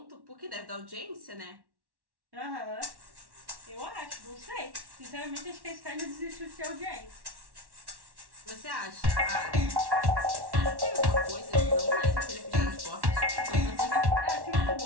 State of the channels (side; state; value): left; late; 1.1 ms